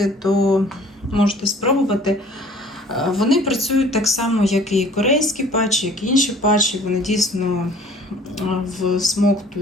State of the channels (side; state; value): both; normal; correlation 0.51